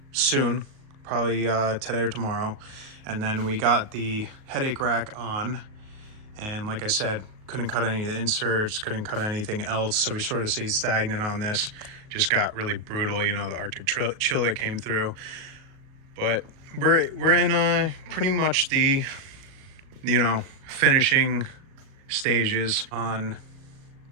soon, probably today or tomorrow. And then we got the headache rack on, and like I said, couldn't cut any of the inserts, couldn't cut anything else, so we sort of stayed stagnant on this. Just got really brutal, you know, the Arctic chill that came through. But we're in pretty much the, you know, finishing stages. On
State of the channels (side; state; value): left; late; 38 ms